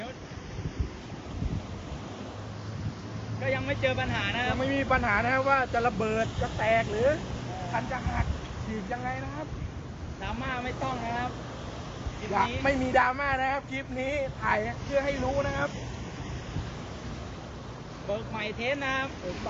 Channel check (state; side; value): identical; both; correlation 1.00